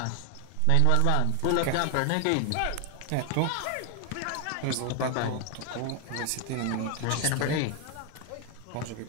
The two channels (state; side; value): different; both; correlation 0.00